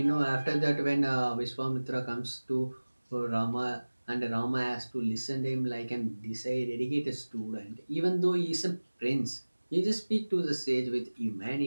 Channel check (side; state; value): both; inverted; correlation -1.00